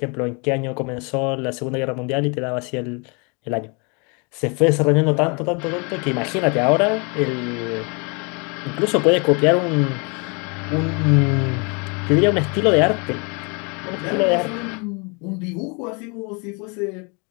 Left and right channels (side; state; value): right; quieter; 32.9 dB